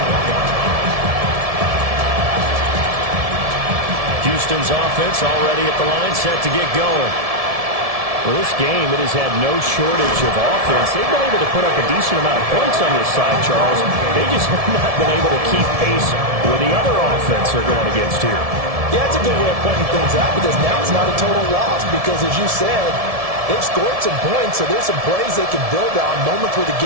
Houston's offense already at the line, set to get going. Well, this game, it has had no shortage of offense. They've been able to put up a decent amount of points on this side, Charles. They just have not been able to keep pace with the other offense they're going against here. Yeah, it's a good way of pointing things out because now it's not a total loss because, as you said, they've scored some points, so there's some plays they can build on, moments where the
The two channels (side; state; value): left; late; 1.7 ms